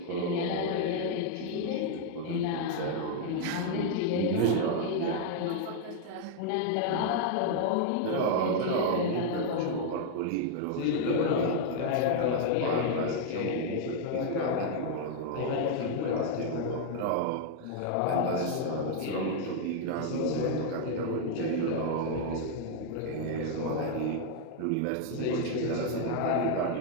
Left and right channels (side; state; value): both; different; correlation 0.00